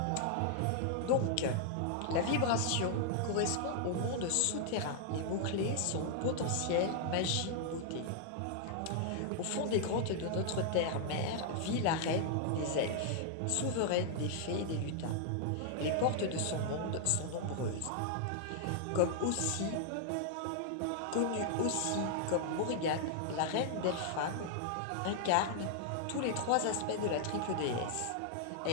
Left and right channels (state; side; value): different; both; correlation -0.01